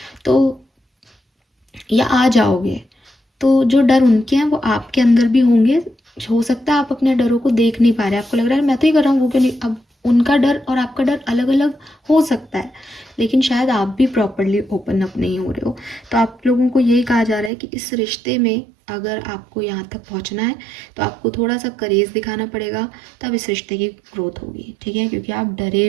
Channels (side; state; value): left; drops out; at 17.5 s